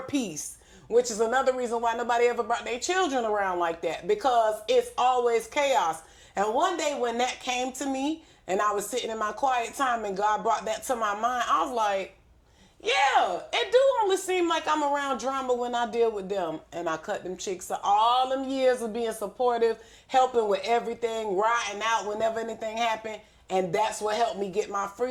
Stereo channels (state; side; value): identical; both; correlation 1.00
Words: peace, which is another reason why nobody ever brought their children around like that, because it's always chaos. And one day when that came to me, and I was sitting in my quiet time, and God brought that to my mind, I was like, yeah, it do only seem like I'm around drama when I deal with them. And I cut them chicks. So all them years of being supportive, helping with everything, riding out whenever anything happened. And that's what helped me get my